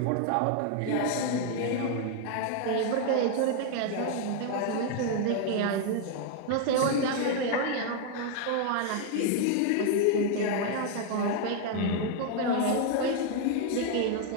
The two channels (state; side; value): different; both; correlation 0.00